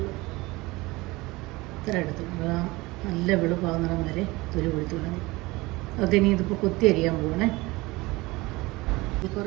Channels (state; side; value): quieter; left; 21.8 dB